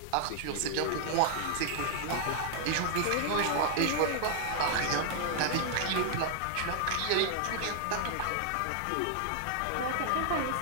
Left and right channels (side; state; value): both; different; correlation -0.01